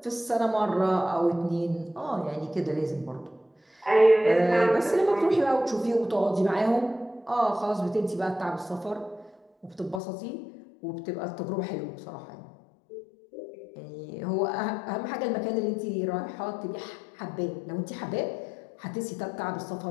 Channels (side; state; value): right; drops out; at 10.0 s